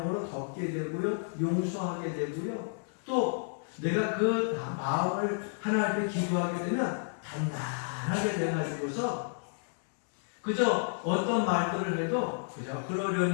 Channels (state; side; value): silent; right; digital silence